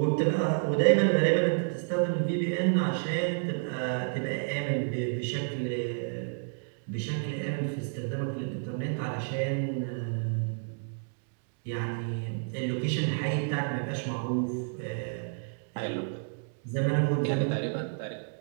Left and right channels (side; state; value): left; silent; digital silence